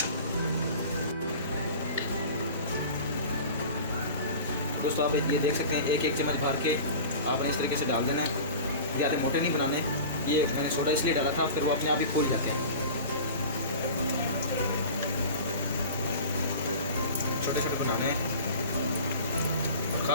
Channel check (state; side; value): inverted; both; correlation -0.37